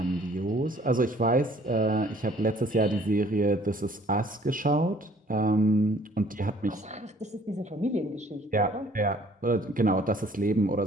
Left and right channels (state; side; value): normal; both; correlation 0.57